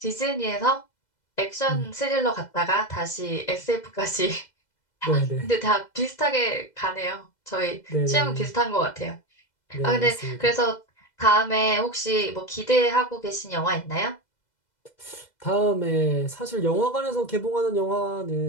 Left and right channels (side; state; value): right; late; 2.0 ms